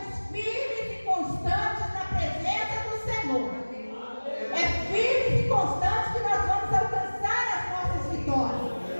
firmes e constantes na presença do Senhor. É firmes e constantes que nós vamos alcançar as nossas vitórias.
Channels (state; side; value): inverted; both; correlation -1.00